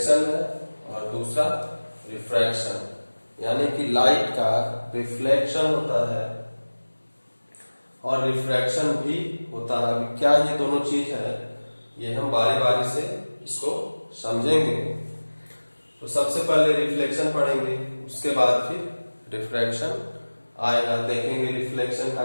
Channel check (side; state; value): both; inverted; correlation -1.00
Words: है और दूसरा रिफ्रैक्शन। यानी कि लाइट का रिफ्लेक्शन होता है और रिफ्रैक्शन भी होता है। अभी क्या ये दोनों चीज है, ये हम बारी बारी से इसको समझेंगे। तो सबसे पहले रिफ्लेक्शन पढ़ेंगे, उसके बाद फिर रिफ्रैक्शन आएगा। देखेंगे रिफ्लेक्शन का